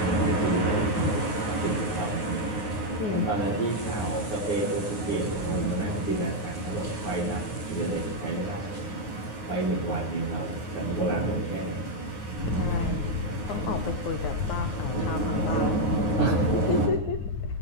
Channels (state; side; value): late; right; 9.5 ms